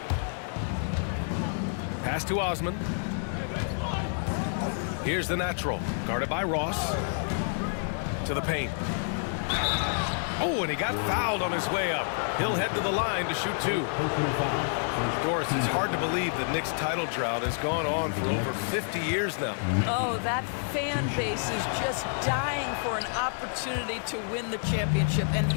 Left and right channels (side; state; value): right; silent; digital silence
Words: Pass to Osman. Here's the natural, guarded by Ross. To the paint. Oh, and he got fouled on his way up. He'll head to the line to shoot 2. Doris, it's hard to believe the Knicks title drought has gone on for over 50 years now. Oh, that fan base is just dying for an opportunity to win the championship. And